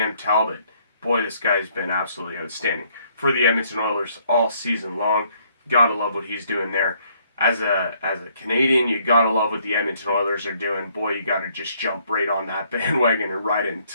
Talbot. Boy, this guy's been absolutely outstanding for the Edmonton Oilers all season long. Gotta love what he's doing there. As a Canadian, you gotta love what the Edmonton Oilers are doing. Boy, you gotta just jump right on that bandwagon and ride it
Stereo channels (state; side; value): inverted; both; correlation -0.66